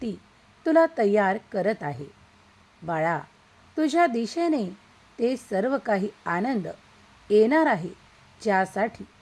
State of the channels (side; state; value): both; identical; correlation 1.00